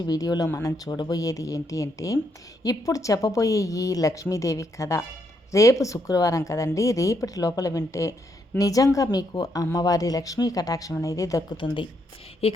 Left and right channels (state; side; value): normal; both; correlation 0.76